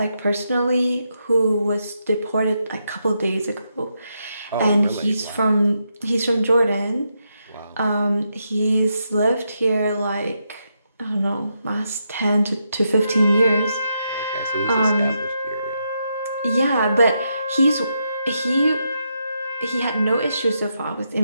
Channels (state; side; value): inverted; both; correlation -0.82